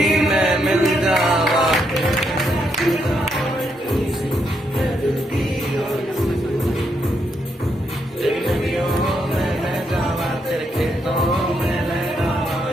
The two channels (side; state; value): both; normal; correlation 0.78